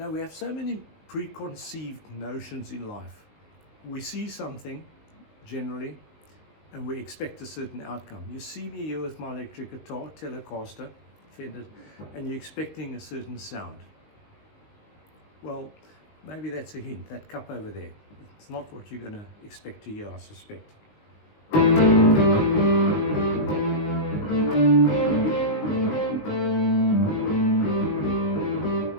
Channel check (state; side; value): late; right; 19 ms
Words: we have so many preconceived notions in life. We see something, generally, and we expect a certain outcome. You see me here with my electric guitar, Telecaster, Fender, and you're expecting a certain sound. Well, maybe that's a hint, that cup over there. It's not what you're going to expect to hear, I suspect.